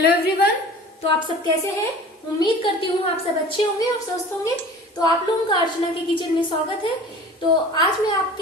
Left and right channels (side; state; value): both; normal; correlation 0.42